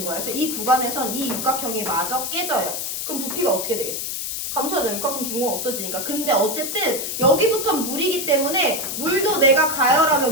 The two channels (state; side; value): noise; left; hiss, 4 dB below the sound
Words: 거야. 그래서 이 구간에선 이 육각형이 마저 깨져요. 그럼 부피가 어떻게 되겠어? 감소하죠. 육각형 빈 공간 없어지니까. 근데 어쨌든 여기부터 물이기 때문에 물도 내가 가열하면